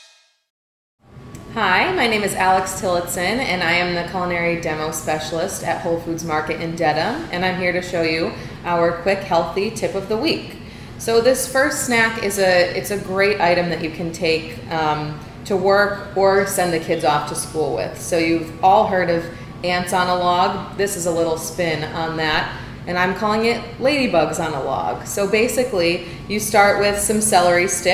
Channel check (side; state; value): both; identical; correlation 1.00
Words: Hi, my name is Alex Tillotson, and I am the culinary demo specialist at Whole Foods Market in Dedham, and I'm here to show you our quick, healthy tip of the week. So this first snack is it's a great item that you can take to work or send the kids off to school with. So you've all heard of ants on a log. This is a little spin on that, and I'm calling it Ladybugs on a log. So basically, you start with some celery